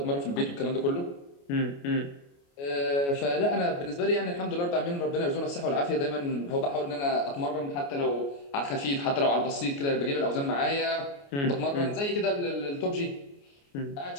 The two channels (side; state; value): right; late; 29 ms